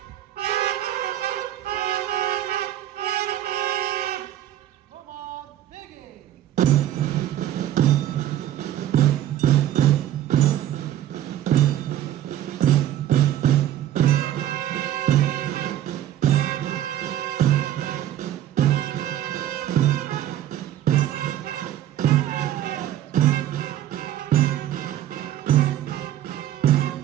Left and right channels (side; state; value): left; quieter; 12.1 dB